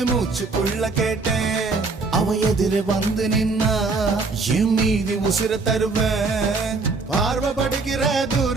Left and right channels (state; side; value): quieter; left; 4.0 dB